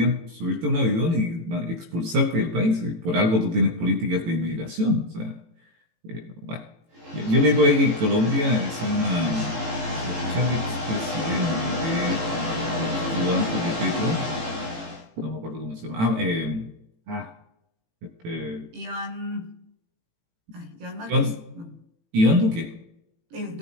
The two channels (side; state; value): left; late; 18 ms